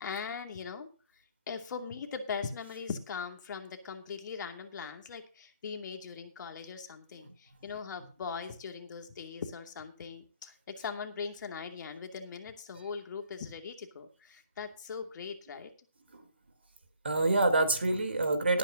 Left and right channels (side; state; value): both; inverted; correlation -0.63